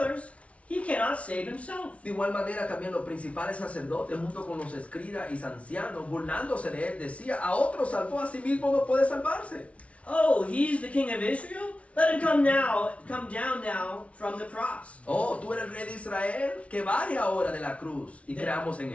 he cannot save himself. De igual manera también los principales sacerdotes junto con los escribas y ancianos burlándose de él decía, a otro salvó, a sí mismo no puede salvarse. Oh, he's the king of Israel? Let him come down now from the cross. Oh, tú eres el rey de Israel, que baje ahora de la cruz y creamos en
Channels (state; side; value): late; right; 0.063 ms